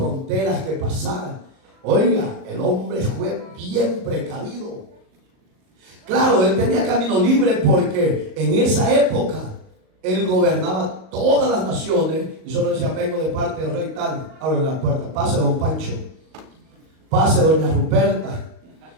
que pasar. Oiga, el hombre fue bien precavido. Claro, él tenía camino libre porque en esa época él gobernaba todas las naciones y solo decía: vengo de parte del rey tal, abre la puerta, pase don Pancho, pase doña Ruperta.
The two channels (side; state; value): left; late; 38 ms